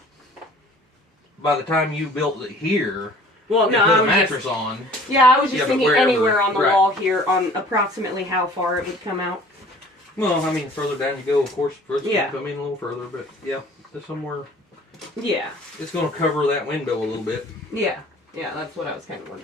By the time you built it here, Well, no, and put I a was mattress just, on. yeah, I was just Yeah, but thinking wherever, anywhere on the right. wall here, on approximately how far it would come out. Well, I mean, further down you go, of course, further Yeah. come in a little further, but yeah, there's somewhere. Yeah. It's going to cover that window a little bit. Yeah. Yeah, that's what I was kind of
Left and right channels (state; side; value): normal; both; correlation 0.50